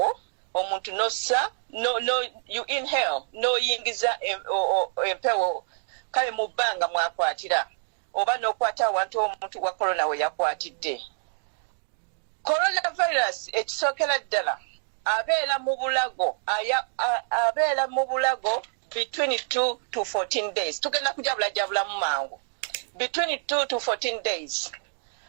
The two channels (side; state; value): left; silent; digital silence